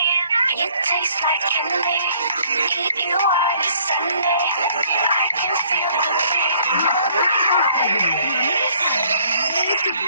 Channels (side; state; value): both; inverted; correlation -0.61